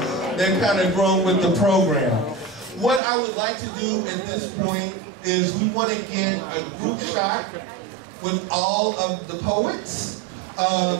they're kind of grown with the program. What I would like to do at this point is we want to get a group shot with all of the poets.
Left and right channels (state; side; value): drops out; left; at 3.0 s